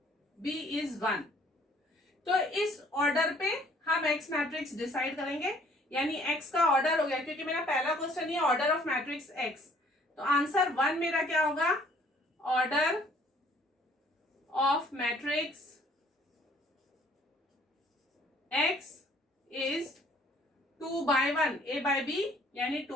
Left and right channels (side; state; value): both; normal; correlation 0.59